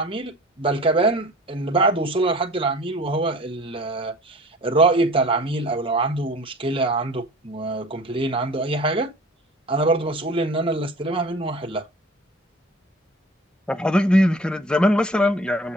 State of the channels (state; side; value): normal; both; correlation 0.44